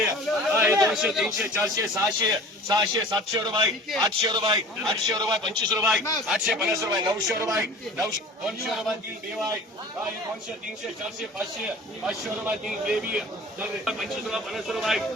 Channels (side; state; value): both; normal; correlation 0.42